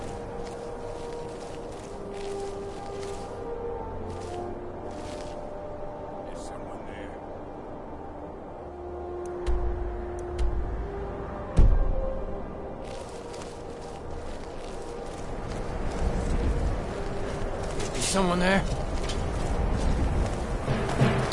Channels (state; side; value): identical; both; correlation 1.00